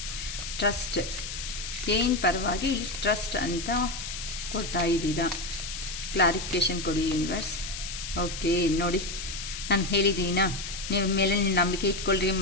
ಟ್ರಸ್ಟ್ ಏನು ಪರವಾಗಿ ಇಲ್ಲಿ ಟ್ರಸ್ಟ್ ಅಂತ ಕೊಡ್ತಾ ಇದ್ದೀರಾ? ಕ್ಲಾರಿಫಿಕೇಷನ್ ಕೊಡಿ ಯೂನಿವರ್ಸ್. ಓಕೆ, ನೋಡಿ ನಾನು ಹೇಳಿದ್ದೀನಾ ನೀವು ಮೇಲೆ ನೀವು ನಂಬಿಕೆ ಇಟ್ಕೊಳ್ರಿ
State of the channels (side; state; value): left; noise; hiss, 7 dB below the sound